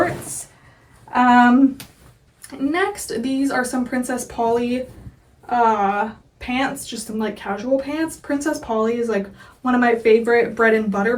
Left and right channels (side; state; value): both; identical; correlation 1.00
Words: Next, these are some Princess Polly pants, just some like casual pants. Princess Polly is like one of my favorite bread and butter